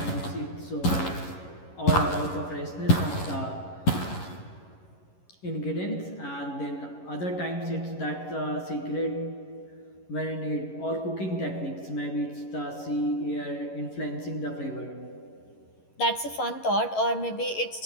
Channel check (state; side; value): late; right; 11 ms